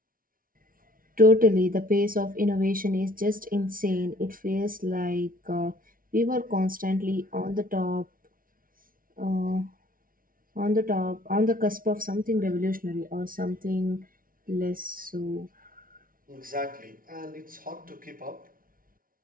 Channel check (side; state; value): left; late; 0.41 ms